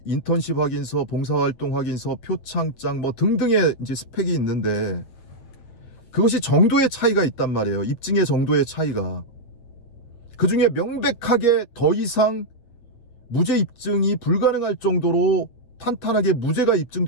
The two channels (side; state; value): right; late; 8.8 ms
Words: 인턴십 확인서, 봉사활동 확인서, 표창장 뭐 등등의 이제 스펙이 있는데 그것이 정도의 차이가 있단 말이에요. 입증의 정도의 차이가. 그 중에 명백하게 더 이상 무죄 입증이 불가능할 정도로 탄탄하게 무죄가